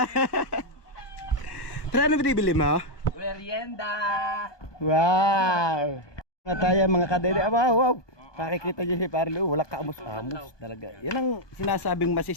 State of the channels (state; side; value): late; right; 1.2 ms